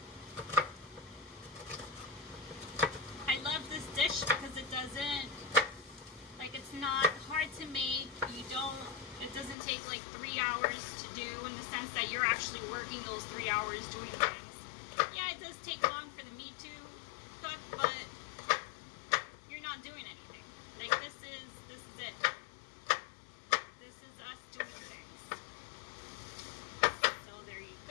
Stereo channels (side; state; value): right; drops out; at 9.6 s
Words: I love this dish because it doesn't, like, it's not hard to make. It doesn't take like 3 hours to do, in the sense that you're actually working those 3 hours doing things. Yeah, it does take long for the meat to cook, but you're not doing anything. Like this is it. This is us doing things. So there you